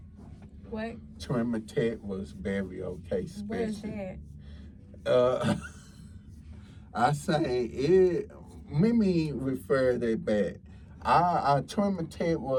What? Trinity was very okay, especially. What is that? I say it. Let me refer that back. Trinity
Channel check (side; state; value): both; identical; correlation 1.00